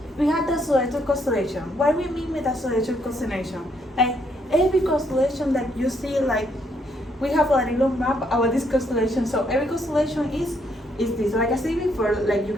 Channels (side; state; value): both; normal; correlation 0.73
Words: we have the solar constellation. What we mean with the solar constellation? Like every constellation that you see, like we have a little map about this constellation. So every constellation is this. Like I said before, like you